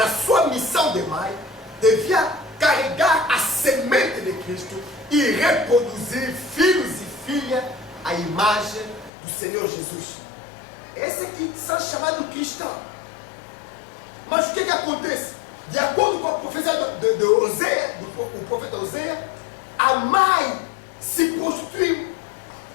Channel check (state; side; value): drops out; right; at 9.1 s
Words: sua missão de mãe, devia carregar a semente de Cristo e reproduzir filhos e filhas à imagem do Senhor Jesus. Esse aqui são chamados cristãos. Mas o que acontece? De acordo com a profecia de Oséias, o profeta Oséias, a mãe se prostituiu.